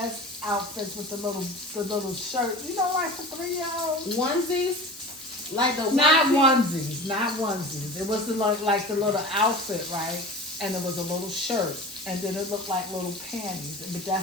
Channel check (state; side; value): noise; left; hiss, 18 dB below the sound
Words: outfits with the little shirt. You know, like for 3-year-olds. Onesies? Like the Not onesie? onesies. It was like the little outfit, right? And it was a little shirt. And then it looked like little panties. But